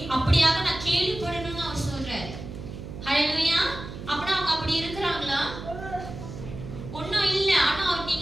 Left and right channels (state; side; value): noise; right; hum, 10 dB below the sound